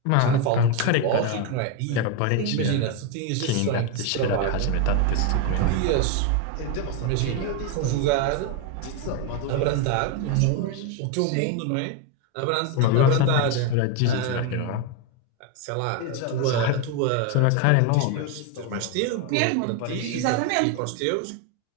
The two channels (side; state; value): both; different; correlation 0.02